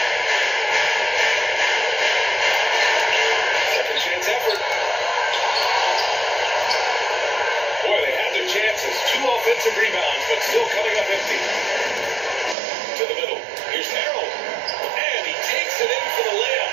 Second chance effort. Boy, they had their chances. 2 offensive rebounds, but still coming up empty. To the middle. Here's Harrell. And he takes it in for the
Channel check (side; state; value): left; drops out; at 12.6 s